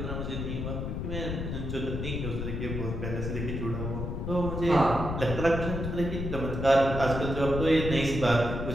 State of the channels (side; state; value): left; noise; rumble, 4 dB below the sound